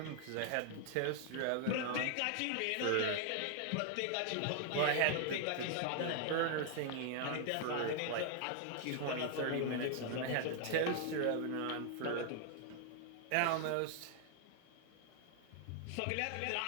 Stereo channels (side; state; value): both; different; correlation 0.00